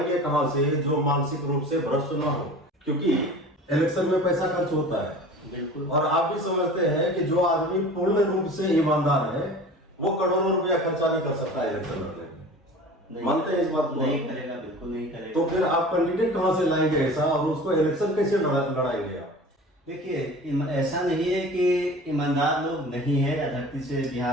कहां से जो मानसिक रूप से भ्रष्ट ना हो? क्योंकि इलेक्शन में पैसा खर्च होता है। बिल्कुल। और आप भी समझते हैं कि जो आदमी पूर्ण रूप से ईमानदार है वो करोड़ों रुपया खर्चा नहीं कर सकता इलेक्शन लड़ने। मानते हैं इस बात को? नहीं करेगा, बिल्कुल नहीं करेगा। तो फिर आप कैंडिडेट कहां से लाएंगे ऐसा, और उसको इलेक्शन कैसे लड़ाएंगे आप? देखिए, ऐसा नहीं है कि ईमानदार लोग नहीं है, धरती से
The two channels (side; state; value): both; normal; correlation 0.39